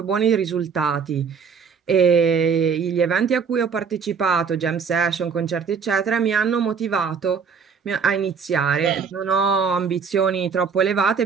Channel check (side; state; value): left; quieter; 6.1 dB